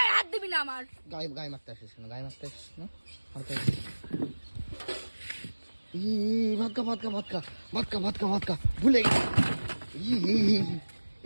হাত দিবি না আমার। গায়ে মারতে আসিস না, ভাতকা ভুলে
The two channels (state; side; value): inverted; both; correlation -1.00